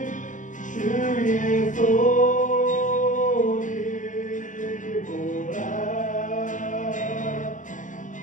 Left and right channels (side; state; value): right; late; 0.37 ms